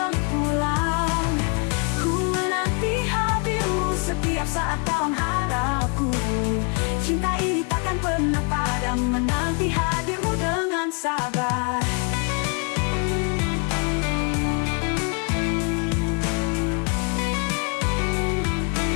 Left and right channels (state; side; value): quieter; right; 35.9 dB